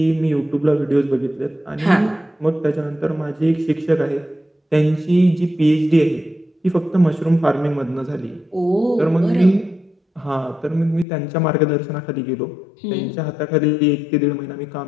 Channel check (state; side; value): drops out; right; at 11.1 s